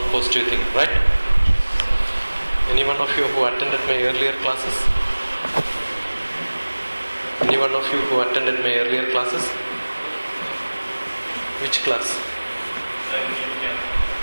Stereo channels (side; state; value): both; inverted; correlation -1.00